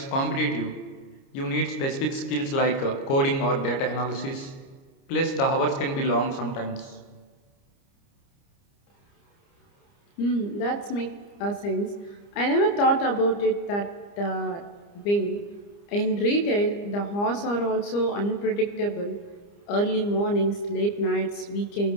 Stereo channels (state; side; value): late; right; 29 ms